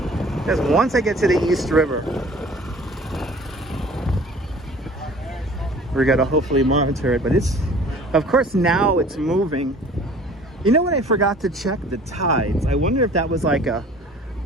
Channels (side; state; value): both; normal; correlation 0.48